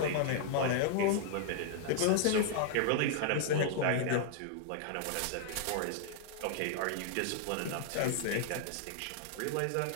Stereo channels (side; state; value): both; different; correlation -0.01